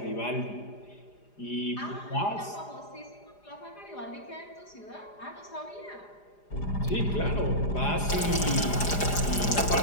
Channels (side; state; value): right; late; 4.9 ms